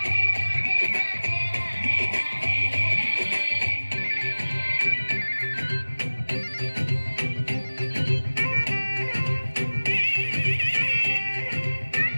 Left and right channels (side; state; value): both; inverted; correlation -1.00